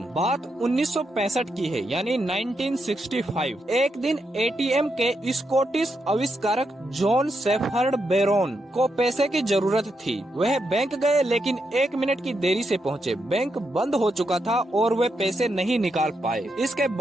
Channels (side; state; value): both; normal; correlation 0.82